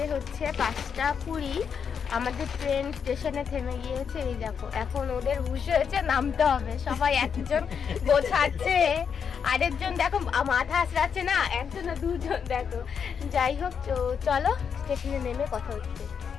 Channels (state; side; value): quieter; right; 6.9 dB